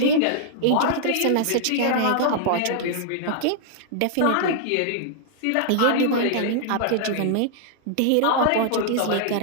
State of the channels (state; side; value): different; both; correlation -0.01